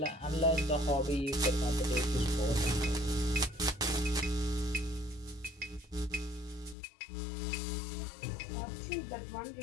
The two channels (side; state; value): right; drops out; at 6.8 s